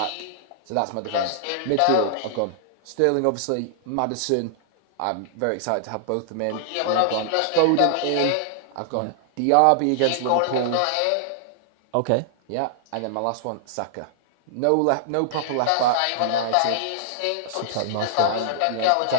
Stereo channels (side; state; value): both; different; correlation -0.01